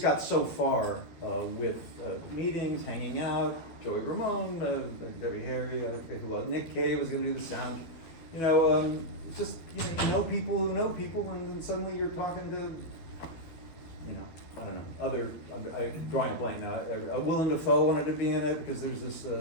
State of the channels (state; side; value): late; right; 12 ms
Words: got so far with meetings, hanging out, Joey Ramone, Debbie Harry, I forget who else, Nick Cave was going to do the sound. You know, it's just, you know people who know people, and then suddenly you're talking to, you know, I don't know, I'm drawing a blank now. Willem Dafoe wanted to be in it because there's this,